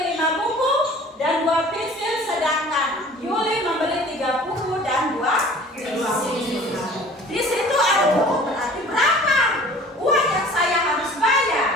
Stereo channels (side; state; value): both; normal; correlation 0.47